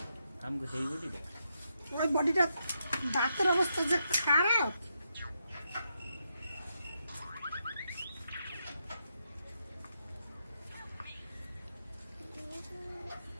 আমগো সেই বুঝি দেখ, ওই বডিটা দাঁতের অবস্থা যে খারাপ।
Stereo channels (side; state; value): both; inverted; correlation -0.82